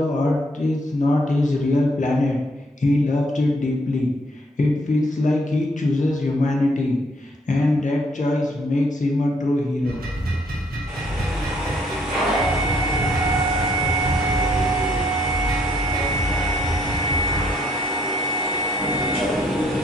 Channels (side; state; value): both; normal; correlation 0.67